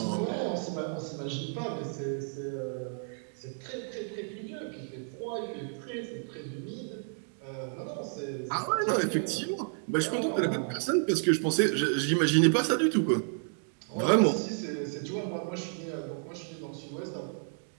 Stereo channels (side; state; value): left; silent; 57 dB below the other